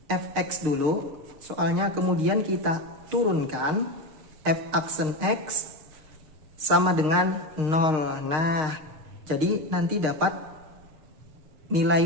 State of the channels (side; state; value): left; late; 6.5 ms